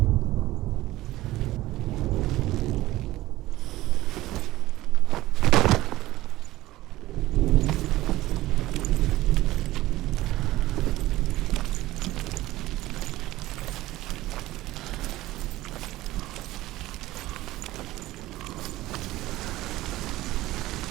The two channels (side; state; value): left; quieter; 16.9 dB